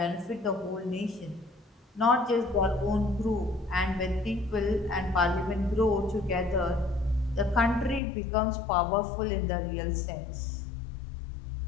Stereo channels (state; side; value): drops out; right; at 8.0 s